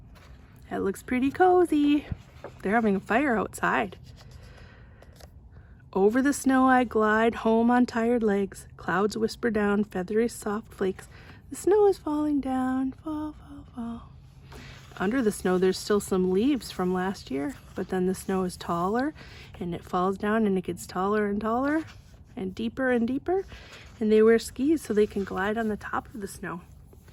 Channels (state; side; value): identical; both; correlation 1.00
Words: That looks pretty cozy. They're having a fire outside. Over the snow I glide, home on tired legs. Clouds whisper down, feathery soft flakes. The snow is falling down, fall, fall, fall. Under the snow, there's still some leaves from last year, but then the snow is taller and it falls down and it gets taller and taller and deeper, and they wear skis so they can glide on the top of the snow.